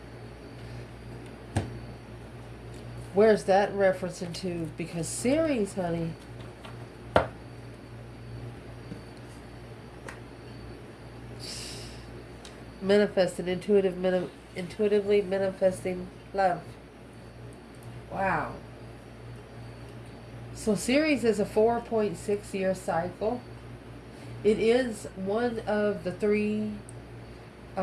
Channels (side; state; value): both; identical; correlation 1.00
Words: where's that referencing to? Because series, honey. Manifesting, intuitively manifesting love. Wow. So series is a 4.6 year cycle. It is one of the 3